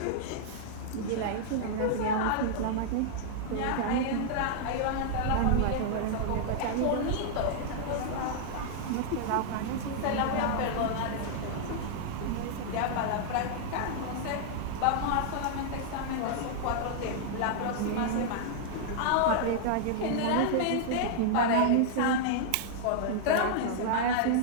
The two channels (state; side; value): different; both; correlation -0.01